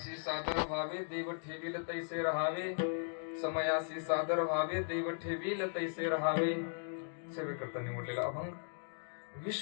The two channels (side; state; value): right; silent; digital silence